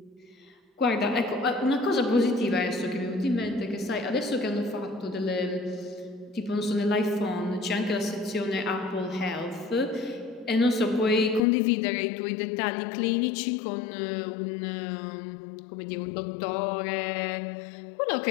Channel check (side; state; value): right; drops out; at 11.4 s